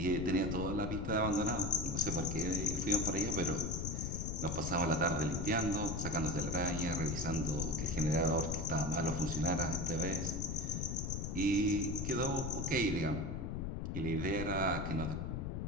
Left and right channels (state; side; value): noise; left; rumble, 3 dB below the sound